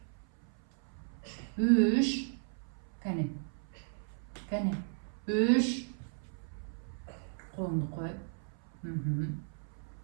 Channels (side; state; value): left; silent; 54 dB below the other